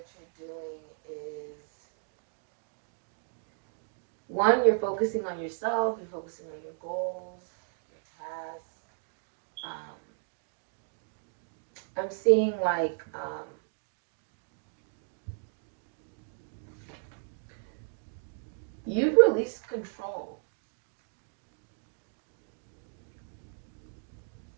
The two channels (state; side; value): silent; left; digital silence